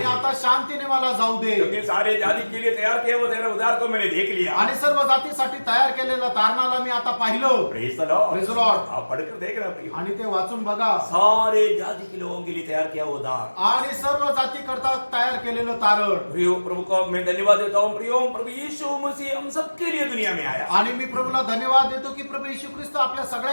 आता शांतीने मला जाऊ दे, क्योंकि सारे जाति के लिए तैयार किया वो तेरा उद्धार को मैंने देख लिया। आणि सर्व जातीसाठी तयार केलेलं तारणाला मी आता पाहिलं। Praise the Lord। Praise the Lord। आप पढ़कर देख रहे प्रियो, आणि ते वाचून बघा, सारे जाति के लोगों के लिए तैयार किया वो उद्धार। आणि सर्व जाती करता तयार केलेलं तारण। प्रियो प्रभु को मैं धन्यवाद देता हूँ। प्रियो प्रभु यीशु मसीह हम सबके लिए दुनिया में आया। आणि मी प्रभूला धन्यवाद देतो की प्रभू येशू ख्रिस्त आपल्या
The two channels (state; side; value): inverted; both; correlation -1.00